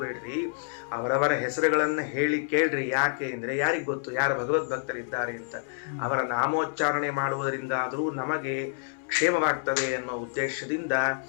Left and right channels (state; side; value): silent; right; 59 dB below the other